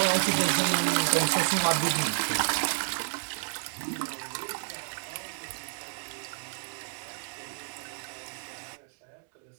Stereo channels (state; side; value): silent; left; digital silence